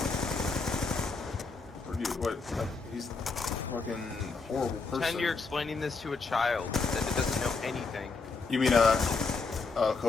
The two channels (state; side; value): quieter; right; 4.3 dB